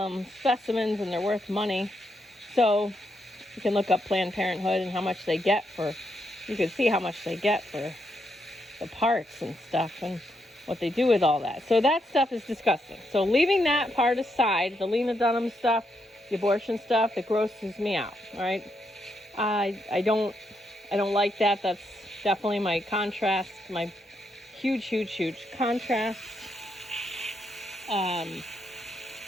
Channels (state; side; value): normal; both; correlation 0.79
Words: them specimens and they're worth money. So you can look up Planned Parenthood and how much they get you can see how much they get for the parts and stuff and what they do with all that. So that stuff is disgusting. So leaving that part aside, the Lena Dunham stuff, the abortion stuff, that grosses me out, all right? I don't like that. That's definitely my contrast, my huge contrast.